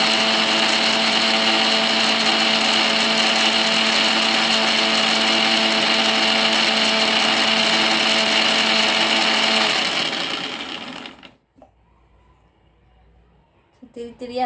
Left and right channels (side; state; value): both; identical; correlation 1.00